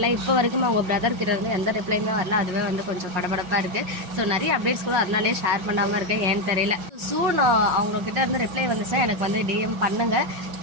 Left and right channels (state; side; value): late; left; 5.5 ms